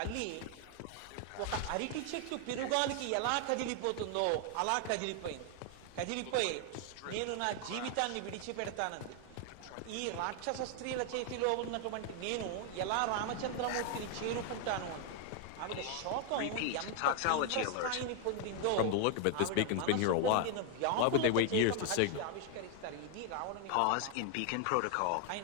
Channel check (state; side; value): different; both; correlation 0.00